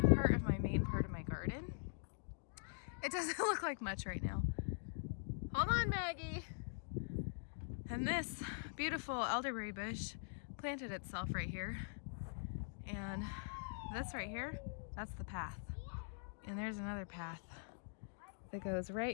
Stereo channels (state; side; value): silent; right; digital silence